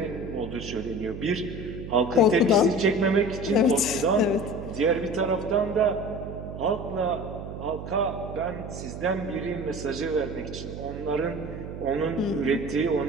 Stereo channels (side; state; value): right; noise; hum, 9 dB below the sound